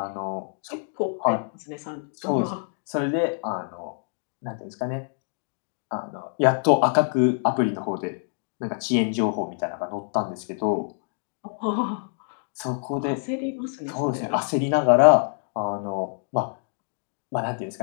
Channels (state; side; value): silent; right; digital silence